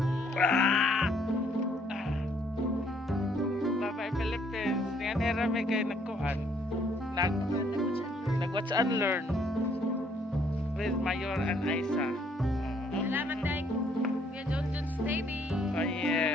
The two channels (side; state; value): both; normal; correlation 0.66